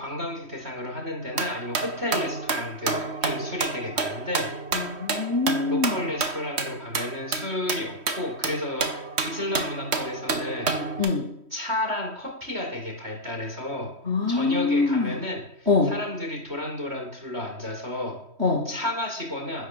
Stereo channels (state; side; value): late; left; 3.1 ms